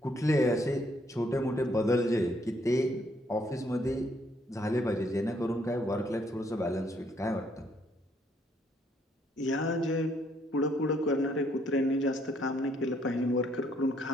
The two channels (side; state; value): both; normal; correlation 0.69